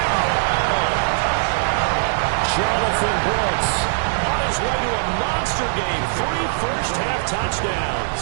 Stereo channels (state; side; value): silent; left; digital silence